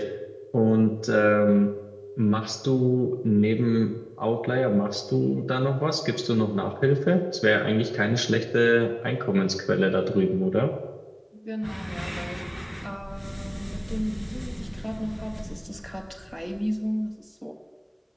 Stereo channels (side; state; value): both; identical; correlation 1.00